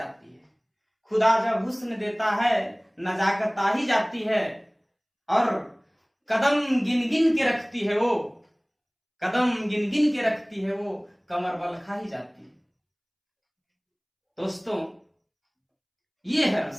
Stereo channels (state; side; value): identical; both; correlation 1.00